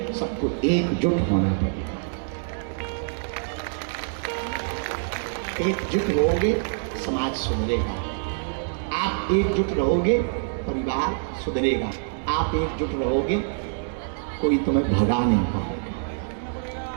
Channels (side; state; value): left; silent; digital silence